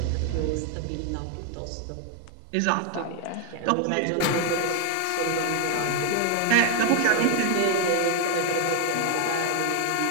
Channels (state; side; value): different; both; correlation 0.00